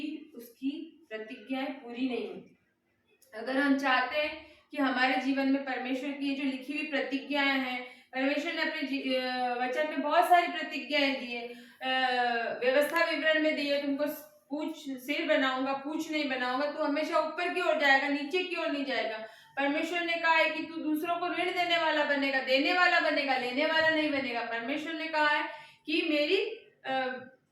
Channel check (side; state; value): both; identical; correlation 1.00